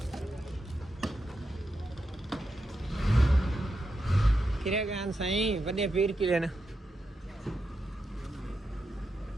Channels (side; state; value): both; normal; correlation 0.86